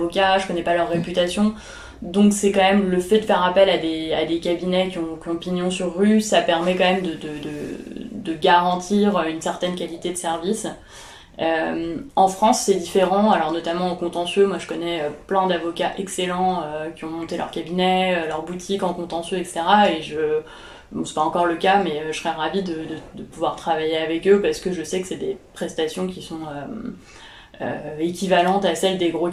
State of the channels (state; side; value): identical; both; correlation 1.00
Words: je connais pas leur réputation. Donc c'est quand même le fait de faire appel à des cabinets qui ont pignon sur rue, ça permet quand même de garantir une certaine qualité de service. En France, c'est différent, alors notamment en contentieux. Moi, je connais plein d'avocats excellents qui ont monté leur cabinet, leur boutique en contentieux, etc. Bon, c'est pas encore le cas, mais je serais ravie de pouvoir travailler avec eux parce que je sais que c'est des prestations qui sont équivalentes à celles des gros